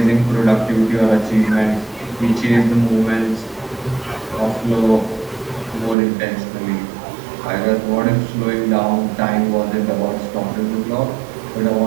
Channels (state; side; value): drops out; left; at 6.0 s